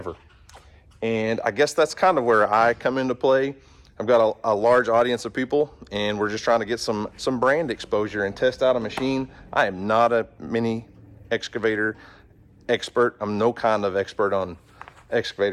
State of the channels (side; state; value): both; identical; correlation 1.00